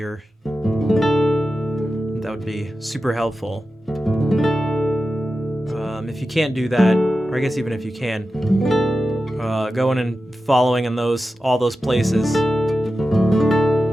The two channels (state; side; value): normal; both; correlation 0.92